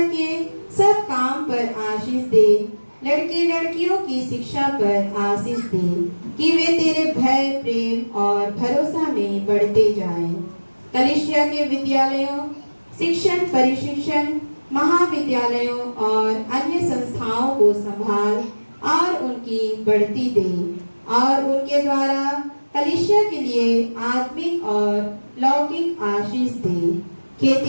के सब काम पर आशीष दे। लड़के लड़कियों की शिक्षा पर आशीष दे कि वे तेरे भय, प्रेम और भरोसा में बढ़ते जाएं। कलीसिया के विद्यालयों, शिक्षण परिशिक्षण, महाविद्यालयों और अन्य संस्थाओं को संभाल और उनकी बढ़ती दे और उनके द्वारा कलीसिया के लिए आत्मिक और लौकिक आशीष दे।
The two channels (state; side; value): inverted; both; correlation -1.00